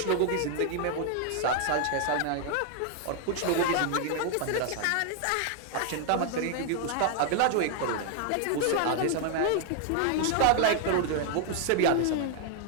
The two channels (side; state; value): both; different; correlation 0.00